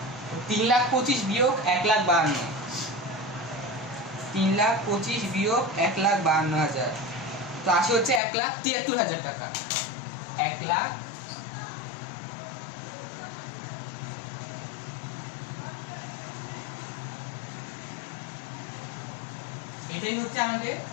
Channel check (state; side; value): drops out; right; at 8.2 s